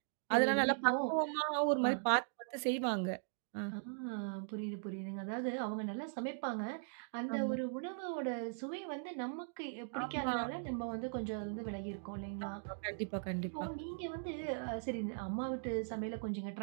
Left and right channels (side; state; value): left; silent; digital silence